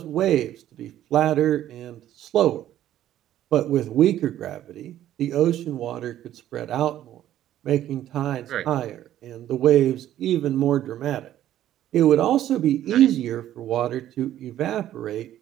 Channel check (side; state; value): left; quieter; 12.3 dB